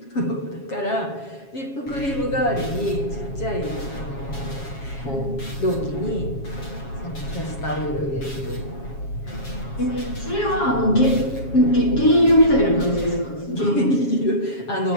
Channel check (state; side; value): late; right; 7.3 ms